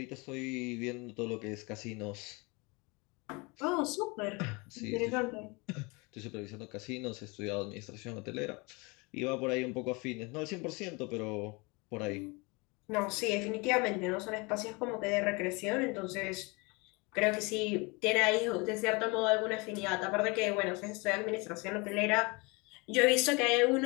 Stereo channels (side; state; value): right; quieter; 27.7 dB